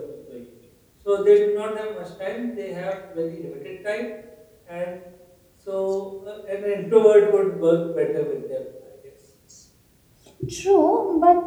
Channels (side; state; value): both; identical; correlation 1.00